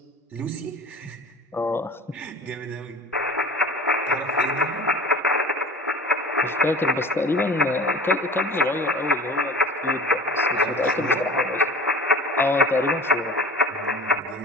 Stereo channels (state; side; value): normal; both; correlation 0.39